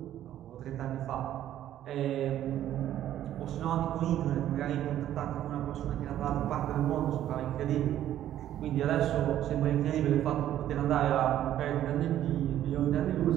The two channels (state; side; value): quieter; left; 12.0 dB